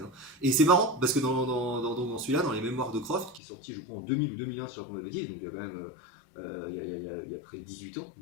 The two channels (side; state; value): right; drops out; at 3.4 s